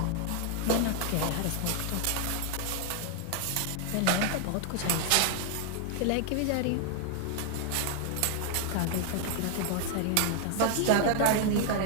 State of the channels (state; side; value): different; both; correlation 0.00